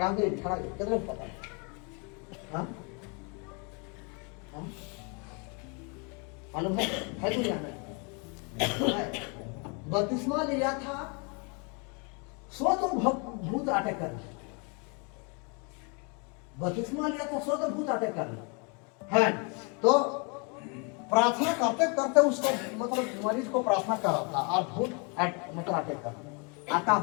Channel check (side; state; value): right; quieter; 34.3 dB